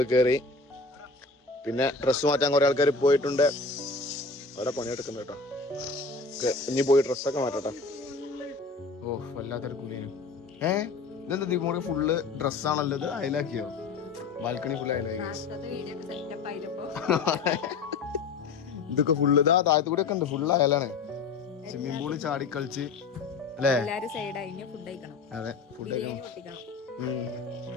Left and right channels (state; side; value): quieter; right; 4.2 dB